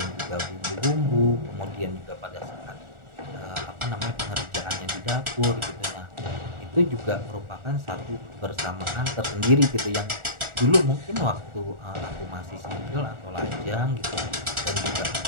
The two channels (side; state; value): left; late; 1.4 ms